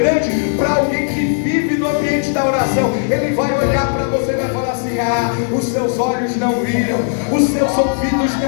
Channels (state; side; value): silent; right; digital silence